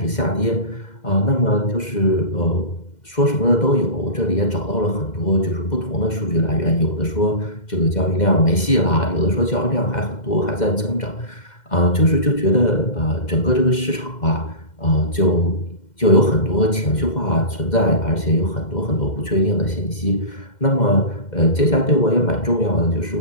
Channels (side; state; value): right; late; 2.1 ms